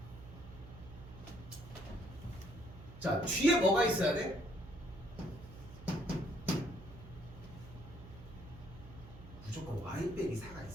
자, 뒤에 뭐가 있어야 돼? 무조건 y 빼기 4가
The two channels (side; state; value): right; noise; hum, 15 dB below the sound